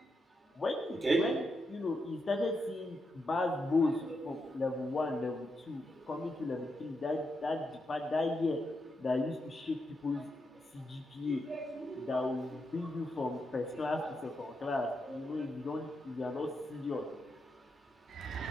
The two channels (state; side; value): normal; both; correlation 0.84